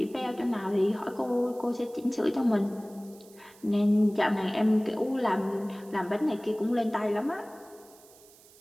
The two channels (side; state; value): right; noise; hiss, 25 dB below the sound